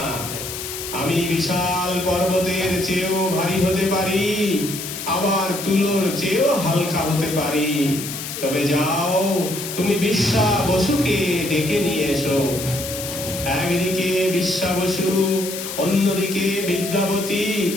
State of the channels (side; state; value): left; noise; hiss, 7 dB below the sound